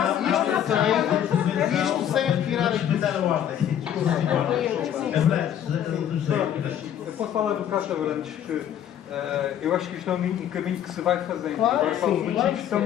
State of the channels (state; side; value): quieter; right; 10.0 dB